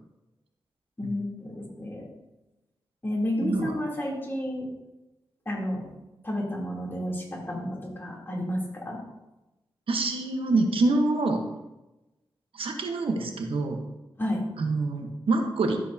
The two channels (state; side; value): normal; both; correlation 0.81